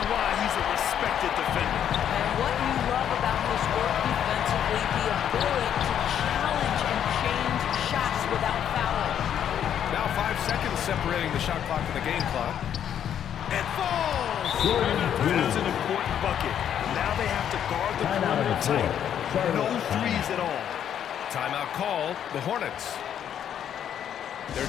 why he's a respected defender. And what you love about his work defensively, the ability to challenge and change shots without fouling. Now 5 seconds separating the shot clock and the game clock. It falls! That's an important bucket. Now they have to guard the perimeter tight. No threes at all. Timeout called, the Hornets.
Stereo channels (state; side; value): quieter; right; 9.5 dB